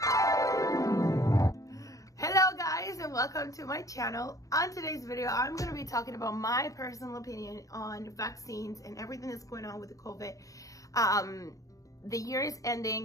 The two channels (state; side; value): late; right; 0.16 ms